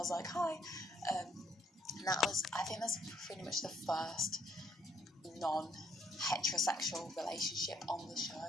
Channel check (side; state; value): both; normal; correlation 0.68